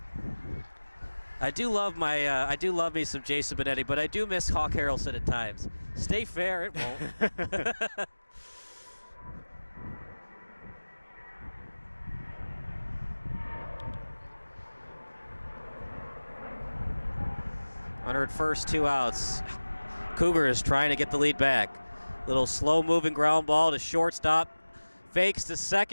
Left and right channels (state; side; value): inverted; both; correlation -1.00